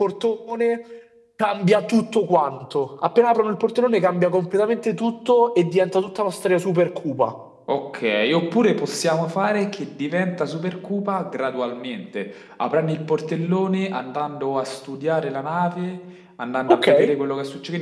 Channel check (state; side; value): identical; both; correlation 1.00